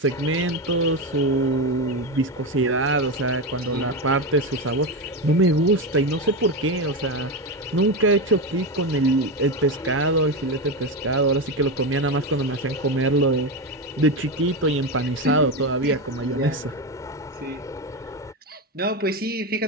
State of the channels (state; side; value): normal; both; correlation 0.15